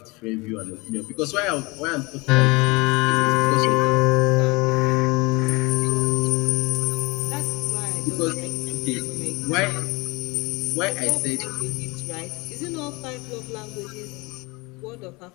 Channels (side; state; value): right; quieter; 25.3 dB